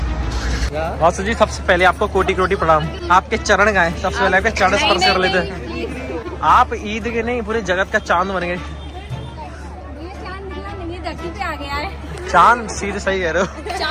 वासु जी सबसे पहले आपको कोटि कोटि प्रणाम। आपके चरण गाए, सबसे पहले आपके चरण स्पर्श कर लेते हैं। आप ईद के नहीं पूरे जगत का चांद बन गए। धरती पे आ गया है। चांद सीधे सही कह रहे हो।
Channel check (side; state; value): both; identical; correlation 1.00